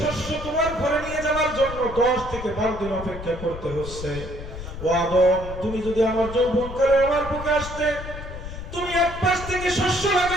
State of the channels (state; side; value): noise; left; rumble, 10 dB below the sound